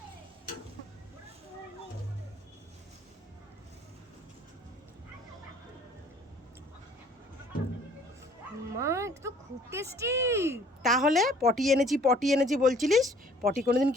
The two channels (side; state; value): both; normal; correlation 0.56